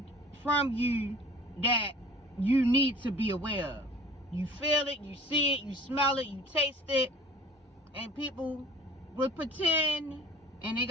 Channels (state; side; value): normal; both; correlation 0.47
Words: from you that you need to be aware of. You feel it, you see it, you smell it, you taste it. And people will pretend, and they